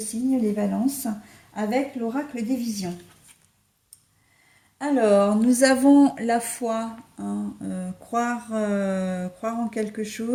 les balances, avec l'oracle des visions. Alors, nous avons la foi, hein, croire en quelque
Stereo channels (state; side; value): identical; both; correlation 1.00